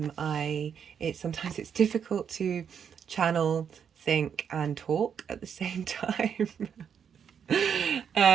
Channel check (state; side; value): quieter; left; 7.6 dB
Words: it's difficult to channel, think and talk at the same time.